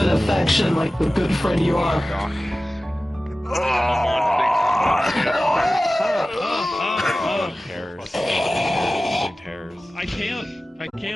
affection like the good friend you are. I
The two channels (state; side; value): normal; both; correlation 0.96